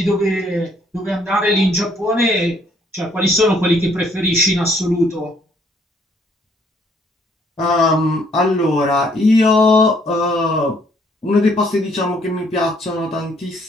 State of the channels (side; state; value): both; normal; correlation 0.65